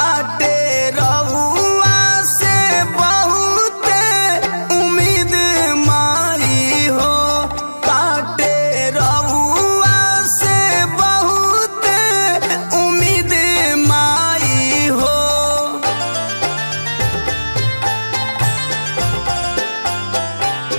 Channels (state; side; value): inverted; both; correlation -1.00